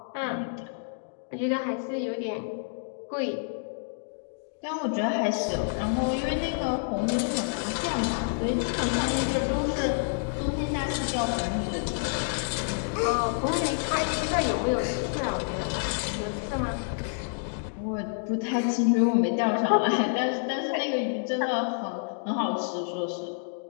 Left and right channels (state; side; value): silent; right; digital silence